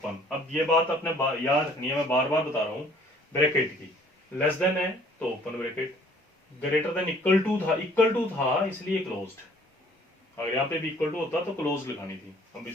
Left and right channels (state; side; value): normal; both; correlation 0.57